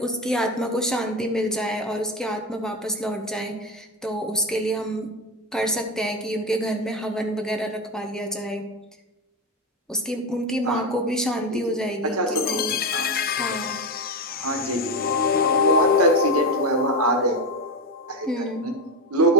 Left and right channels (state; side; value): normal; both; correlation 0.16